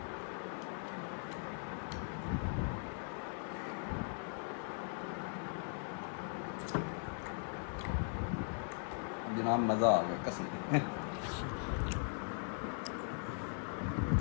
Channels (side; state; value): right; silent; 51 dB below the other